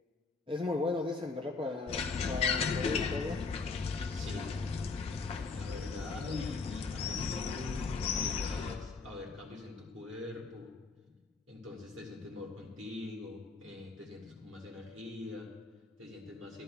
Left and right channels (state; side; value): quieter; right; 4.4 dB